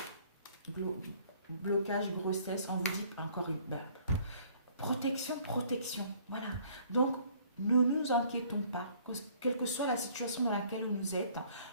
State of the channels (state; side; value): inverted; both; correlation -0.58